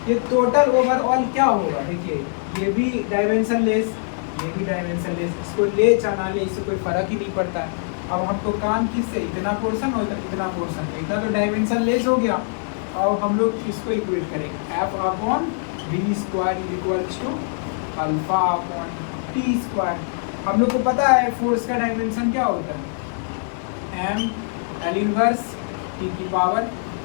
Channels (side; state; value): right; silent; digital silence